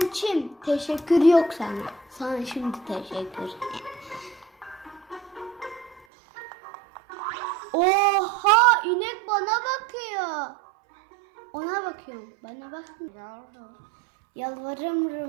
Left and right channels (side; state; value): left; drops out; at 6.1 s